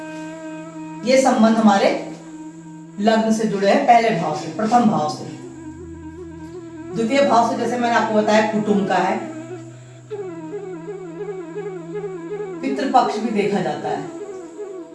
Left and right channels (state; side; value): identical; both; correlation 1.00